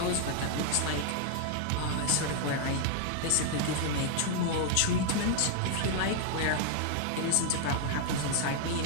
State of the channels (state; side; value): different; both; correlation 0.00